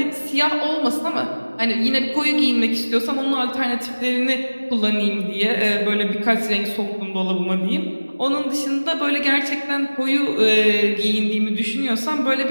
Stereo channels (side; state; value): both; inverted; correlation -1.00